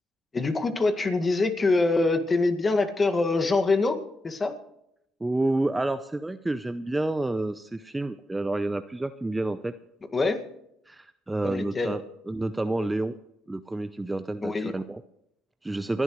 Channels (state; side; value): normal; both; correlation 0.88